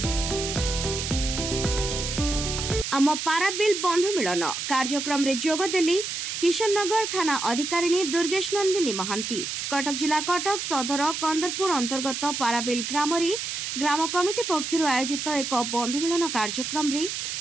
आम पाराबिल बंधु मिलन कार्यक्रम रे जोगदेली किशननगर थाना अधिकारिणी दुर्गेश नंदिनी महांती। कटक जिला कटक सदर कंदरपुर अंतर्गत पाराबिल ग्राम ग्राम कमिटी पक्षर आयोजित एक बंधु मिलन कार्यक्रम रे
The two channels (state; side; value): noise; right; hiss, 4 dB below the sound